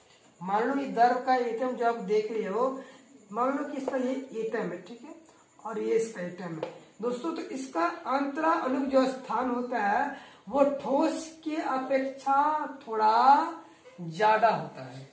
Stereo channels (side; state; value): both; identical; correlation 1.00